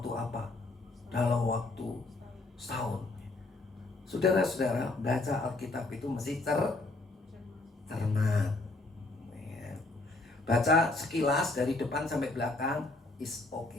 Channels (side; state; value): right; quieter; 3.1 dB